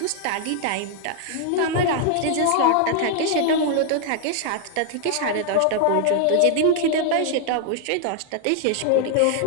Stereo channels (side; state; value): both; different; correlation 0.00